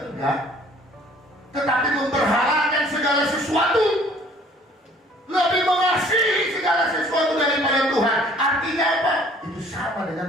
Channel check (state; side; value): normal; both; correlation 0.55